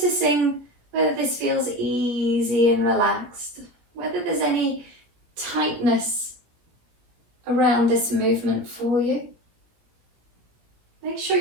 whether this feels easy and relaxed, whether there's any tightness around this movement for you. Make sure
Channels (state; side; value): late; left; 17 ms